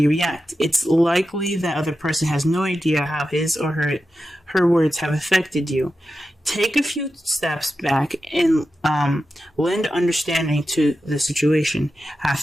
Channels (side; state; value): both; normal; correlation 0.91